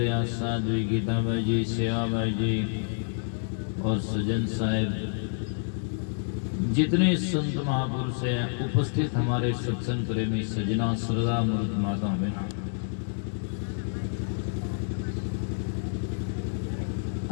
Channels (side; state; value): right; silent; digital silence